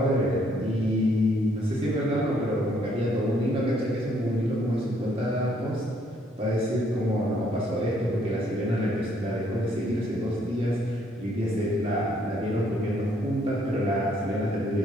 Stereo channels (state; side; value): normal; both; correlation 0.68